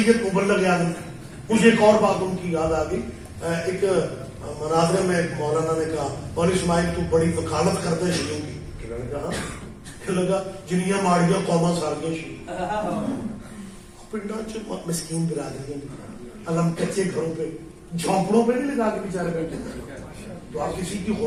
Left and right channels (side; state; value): both; identical; correlation 1.00